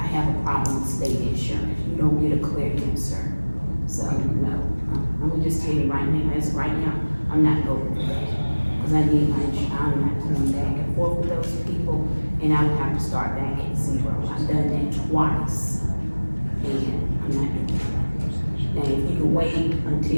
have a problem with state insurance. You don't get a clear answer. So, no, I'm gonna just tell you right now, as of right now, I'm not going for that. Cause I need my insurance, I'm not going back and forth with those people, and I would have to start back at zero. I've done that twice, and I'm not doing that.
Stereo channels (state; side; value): inverted; both; correlation -1.00